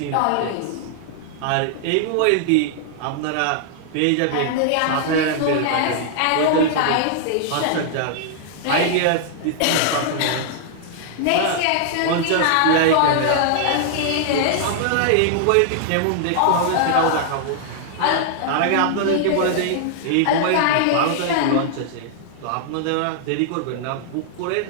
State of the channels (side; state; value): both; different; correlation -0.01